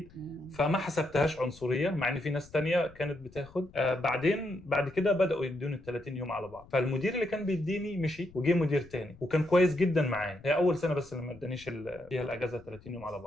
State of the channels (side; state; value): left; noise; rumble, 23 dB below the sound